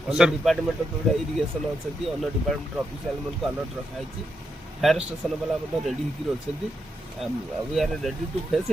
ଅନ୍ୟ ଡିପାର୍ଟମେଣ୍ଟ ଯେଉଁଟା ଇରିଗେସନ୍ ଅଛନ୍ତି ଅନ୍ୟ ଡିପାର୍ଟମେଣ୍ଟର ଅଫିସିଆଲମାନଙ୍କୁ ଆଲର୍ଟ ରଖାହେଇଛି ଫାୟାର ଷ୍ଟେସନ ବାଲା ମଧ୍ୟ ରେଡ଼ି ହେଇକି ଅଛନ୍ତି we are ready to face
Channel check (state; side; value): normal; both; correlation 0.82